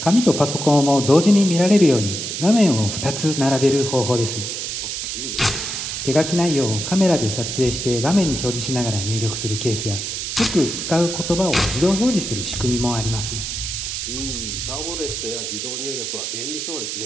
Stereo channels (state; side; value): noise; right; hiss, 4 dB below the sound